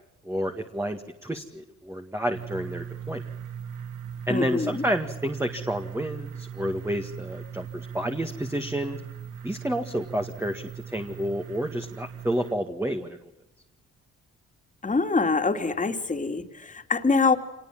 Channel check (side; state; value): both; normal; correlation 0.59